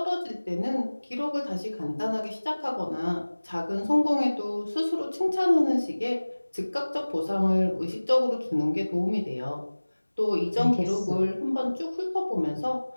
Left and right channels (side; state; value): both; inverted; correlation -1.00